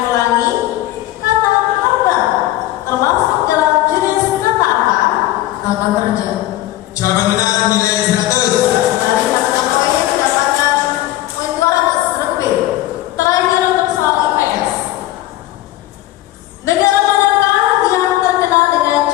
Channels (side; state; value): right; quieter; 15.5 dB